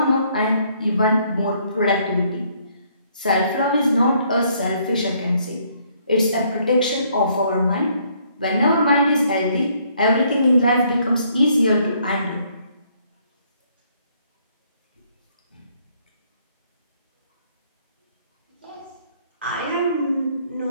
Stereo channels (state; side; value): inverted; both; correlation -0.67